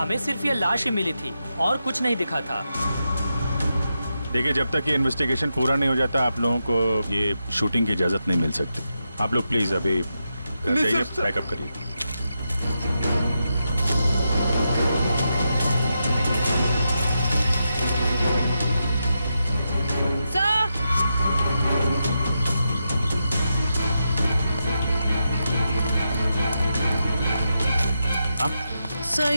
सिर्फ ये लाश ही मिली थी और कुछ नहीं दिखा था। देखिए, जब तक ये इन्वेस्टिगेशन पूरा नहीं हो जाता आप लोगों को ये शूटिंग की इजाजत नहीं मिल सकती। आप लोग प्लीज अभी घर जाइए, पैकअप करिए। सर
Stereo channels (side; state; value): both; inverted; correlation -0.86